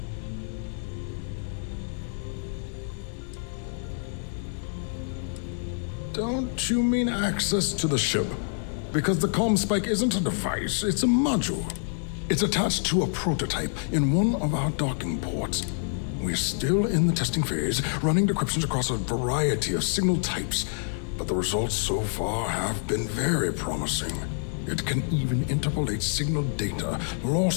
Don't you mean access to the ship? Because the Comspike isn't a device, it's a module. It's attached to a prototype in one of our docking ports. We're still in the testing phase, running decryptions across a variety of signal types, but the results so far have been very promising. It can even interpolate signal data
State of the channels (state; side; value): silent; right; 60 dB below the other